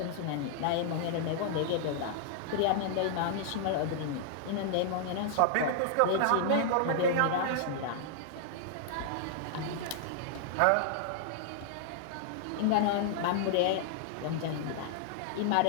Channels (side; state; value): both; different; correlation -0.01